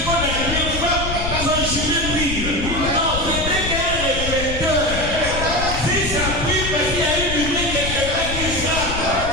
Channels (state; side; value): noise; left; rumble, 5 dB below the sound